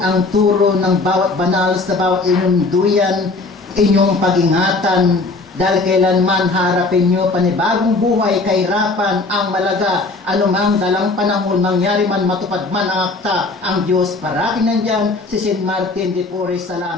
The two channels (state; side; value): quieter; right; 3.5 dB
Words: turo ng bawat banal sa bawat inyong duyan, inyong pag-ingatan, dahil kailanman harapin nyo panibagong buhay, kahirapan, ang malaga, anumang dalang panahon, mangyari man, matupad man ang akta, ang Diyos parating nandyan, si St. Martin de Porres,